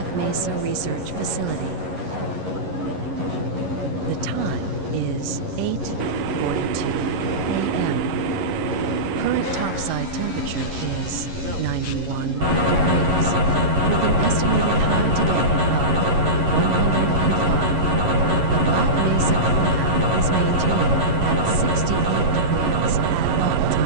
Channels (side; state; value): left; late; 11 ms